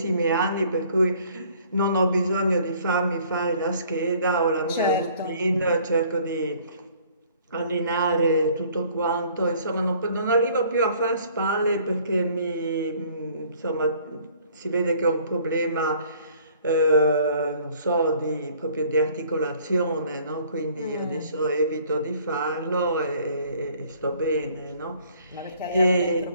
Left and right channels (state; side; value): inverted; both; correlation -0.57